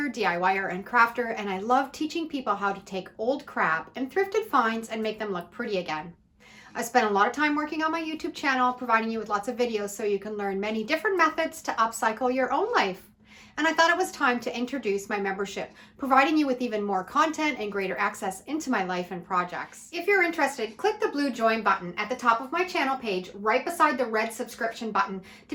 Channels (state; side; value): identical; both; correlation 1.00